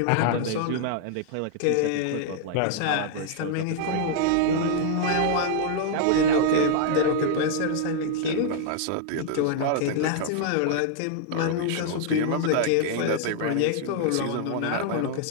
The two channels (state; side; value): different; both; correlation -0.01